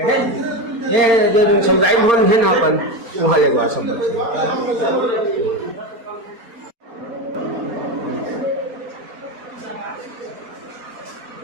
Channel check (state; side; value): late; left; 4.3 ms